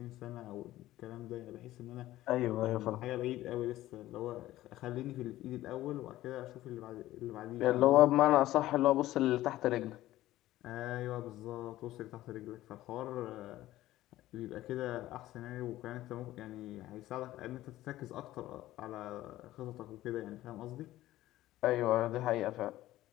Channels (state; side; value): quieter; right; 15.3 dB